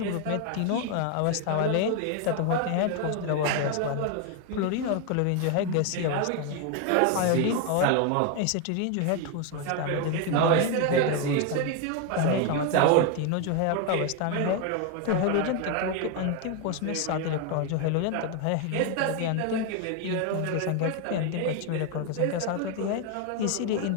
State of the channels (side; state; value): both; different; correlation 0.01